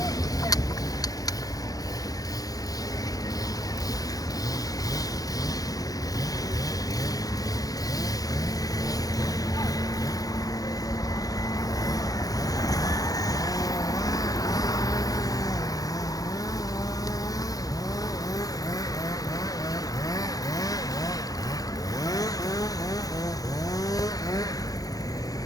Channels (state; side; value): late; right; 0.17 ms